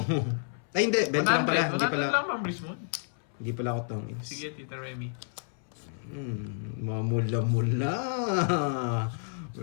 Ay, hindi. 20 lang pala. Hindi 100 pala. lang, Ma'am Rizwan. Hindi pala ako tongits. Sige, Tita Remy. Mamula-mula.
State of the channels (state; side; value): silent; right; 58 dB below the other